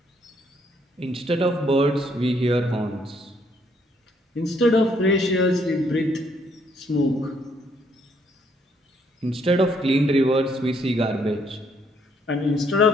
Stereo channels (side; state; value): both; normal; correlation 0.69